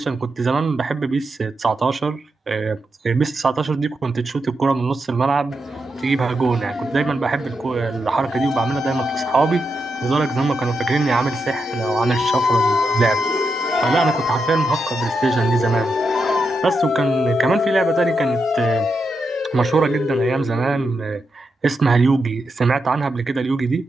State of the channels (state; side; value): normal; both; correlation 0.85